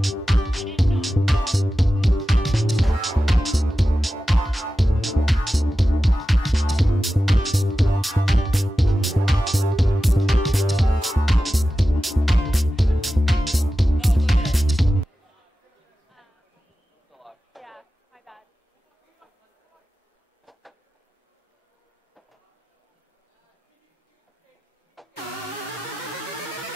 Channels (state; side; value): normal; both; correlation 0.93